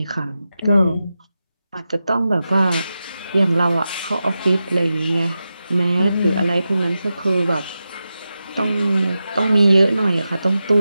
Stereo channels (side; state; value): both; inverted; correlation -0.92